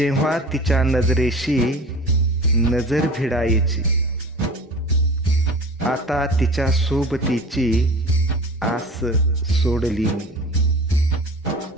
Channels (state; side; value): normal; both; correlation 0.38